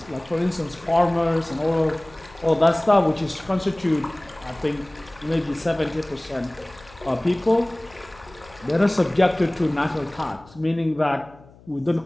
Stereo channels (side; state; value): left; noise; hum, 25 dB below the sound